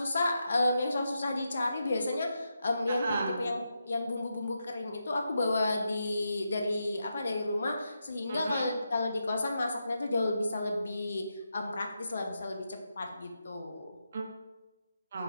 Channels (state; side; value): inverted; both; correlation -0.86